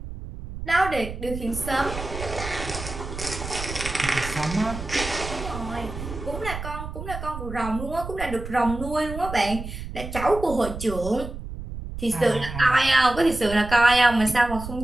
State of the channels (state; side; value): noise; right; rumble, 9 dB below the sound